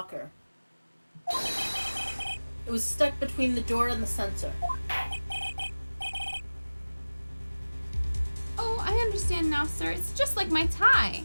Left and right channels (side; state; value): both; inverted; correlation -1.00